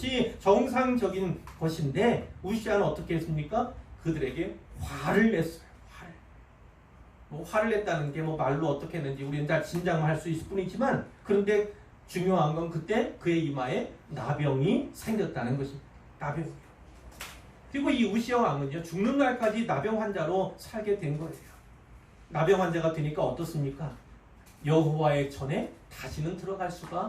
정상적인 것인데, 우시아는 어떻게 했습니까? 그들에게 화를 냈어요. 뭐 화를 냈다는 게 뭐 말로 어떻게 했는지 우리는 다 짐작할 수 있을 뿐이지만, 그런데 중요한 건 그때 그의 이마에 나병이 생겼다는 것입니다. 나병이요. 그리고 이 우시아 왕은요, 죽는 날까지 나병 환자로 살게 된 거예요. 나병 환자가 되니까 어떻습니까? 여호와의 전에 다시는 들어갈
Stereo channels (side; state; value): both; identical; correlation 1.00